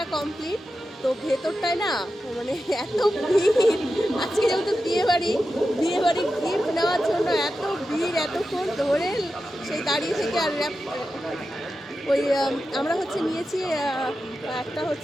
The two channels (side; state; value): both; normal; correlation 0.91